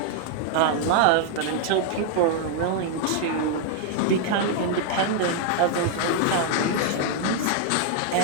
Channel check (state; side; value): different; both; correlation 0.00